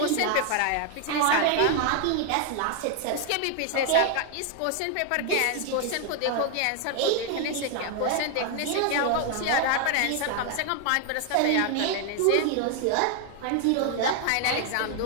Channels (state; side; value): different; both; correlation 0.00